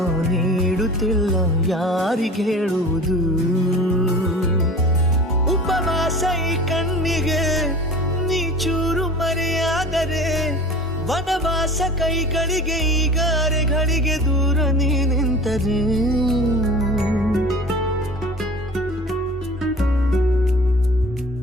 ನೀಡುತ್ತಿಲ್ಲ ಯಾರಿಗೆ ಹೇಳುವುದು ಉಪವಾಸ ಈ ಕಣ್ಣಿಗೆ ನೀ ಚೂರು ಮರೆಯಾದರೆ ವನವಾಸ ಕೈಗಳಿಗೆ ಈಗ ಅರೆಗಳಿಗೆ ದೂರ ನೀ ನಿಂತರೆ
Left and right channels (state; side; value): normal; both; correlation 0.39